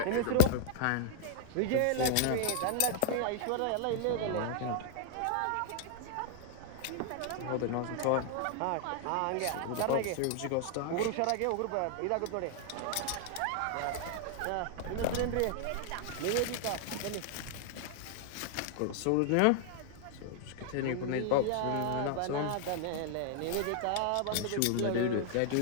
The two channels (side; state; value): both; different; correlation -0.01